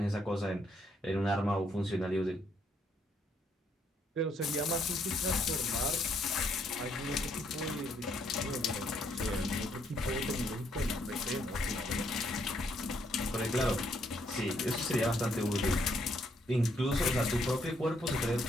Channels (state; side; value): normal; both; correlation 0.72